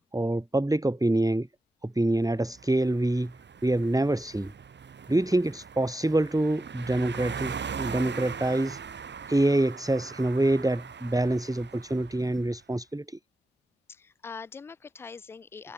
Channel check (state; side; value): normal; both; correlation 0.89